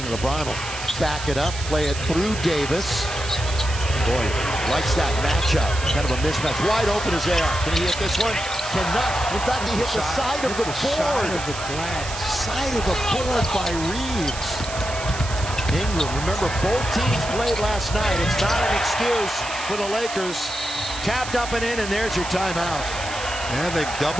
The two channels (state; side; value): noise; right; hiss, 10 dB below the sound